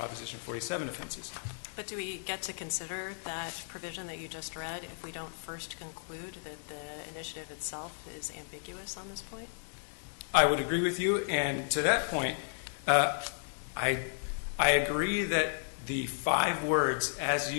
47 offenses. But do we get to consider that provision that you just read if we don't first conclude that the initiative itself is ambiguous on this point? I would agree with you, and to that point, I agree that the 5 words as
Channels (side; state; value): right; silent; digital silence